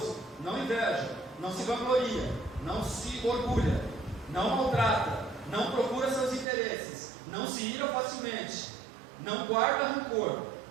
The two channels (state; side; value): drops out; left; at 6.5 s